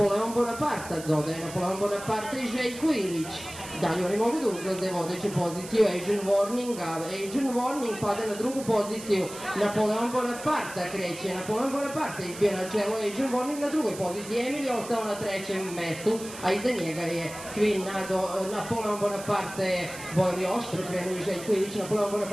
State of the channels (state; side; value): noise; right; hiss, 13 dB below the sound